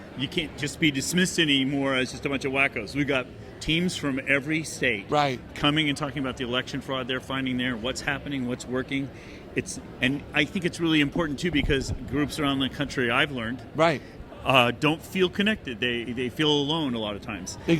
you can't just be dismissed anymore as just a bunch of wackos. We've got teams from every state coming and talking about the election fraud they're finding there, what's happening, what's working. And I think it's really important, too, because groups around the country, I've learned, don't feel connected. They feel alone a lot of times.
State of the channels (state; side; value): identical; both; correlation 1.00